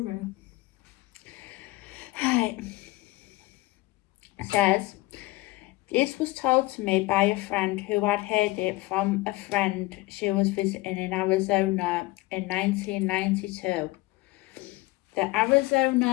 Right. It says, this was told to me by a friend who had heard it from a friend she was visiting in Arizona in 1992. The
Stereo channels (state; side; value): quieter; right; 20.3 dB